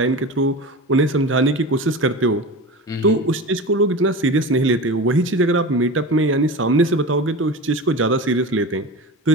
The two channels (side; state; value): both; normal; correlation 0.29